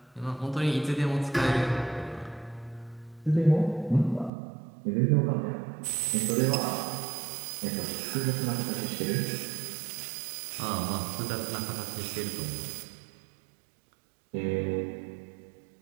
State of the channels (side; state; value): left; drops out; at 4.3 s